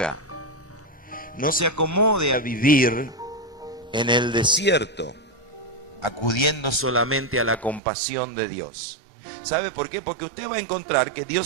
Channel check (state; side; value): drops out; left; at 7.8 s